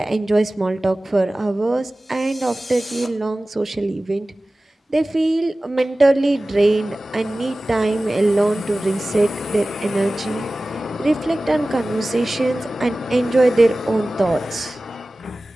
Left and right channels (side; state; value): both; normal; correlation 0.97